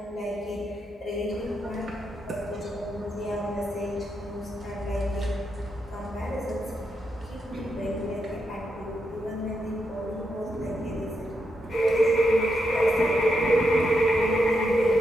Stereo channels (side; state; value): both; normal; correlation 0.83